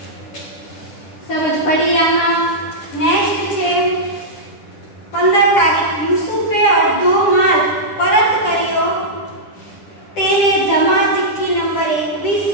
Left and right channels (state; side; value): late; right; 10 ms